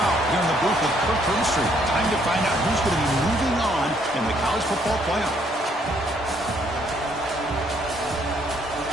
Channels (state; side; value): normal; both; correlation 0.68